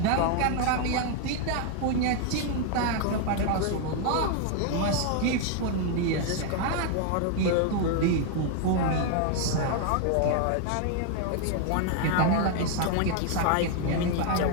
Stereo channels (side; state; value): both; different; correlation 0.00